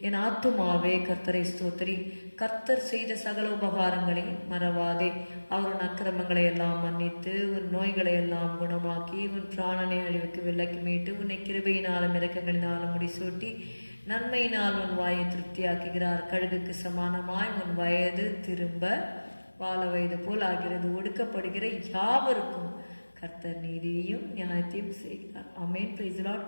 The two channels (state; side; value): inverted; both; correlation -1.00